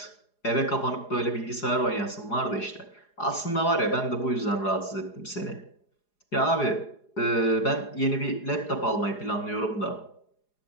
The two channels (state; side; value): late; right; 4.8 ms